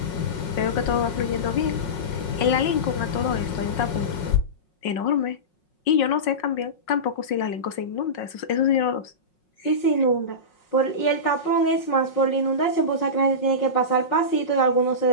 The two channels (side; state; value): right; late; 5.5 ms